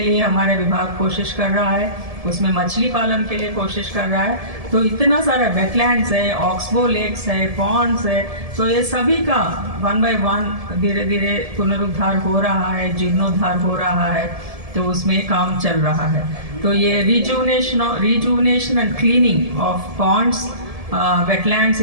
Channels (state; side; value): late; left; 1.7 ms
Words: लिए हमारा विभाग कोशिश कर रहा है। उसमें मछली पालन के लिए कोशिश कर रहा है। तो इतना सारा वेटलैंड्स है, ऑक्सबो लेक्स है, पॉन्ड्स है। तो ये सभी का 1 by 1 धीरे धीरे पुनरुद्धार हो रहा है, जीर्णोद्धार हो रहा है। तो उसमें काम चल रहा है। तो ये rejuvenation and cleaning of ponds, wetlands,